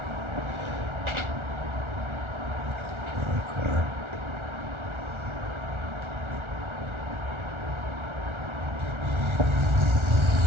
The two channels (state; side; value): late; left; 1.4 ms